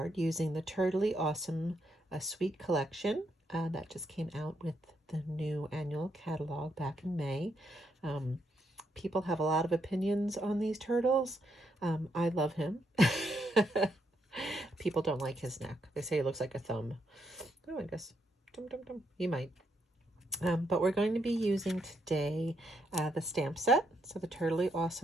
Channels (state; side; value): normal; both; correlation 0.78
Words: using the Turtley Awesome Sweet Collection that just came out with the new annual catalog back in May. People have a lot of opinions on these turtles. I love him. People don't like his neck. They say he looks like a thumb. Oh, I guess. He might. But we're going to be using today the stamp set. So the Turtley